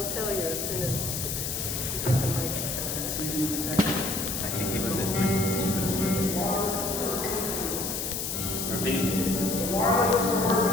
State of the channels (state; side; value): noise; left; hiss, 3 dB below the sound